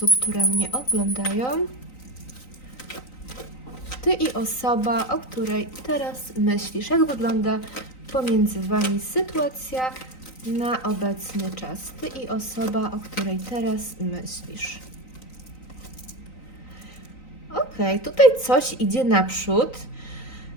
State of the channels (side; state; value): right; late; 3.9 ms